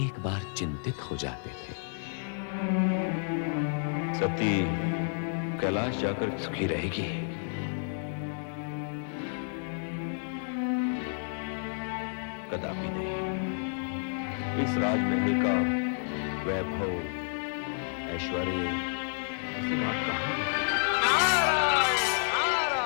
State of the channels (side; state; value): right; silent; digital silence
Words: बार चिंतित हो जाते थे। सती कैलाश जाकर सुखी रहेगी। कदापि नहीं। इस राजमहल का वैभव, ऐश्वर्य सीमा कहां?